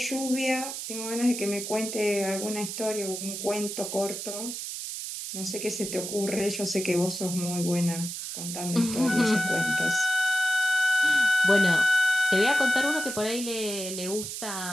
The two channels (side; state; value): right; noise; hiss, 6 dB below the sound